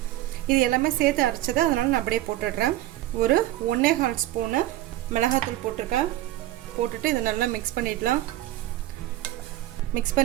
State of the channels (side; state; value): left; quieter; 14.9 dB